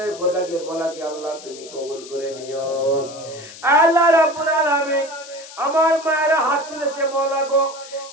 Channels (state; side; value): noise; left; hiss, 16 dB below the sound